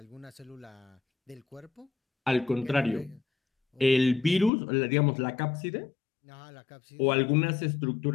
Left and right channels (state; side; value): drops out; right; at 4.5 s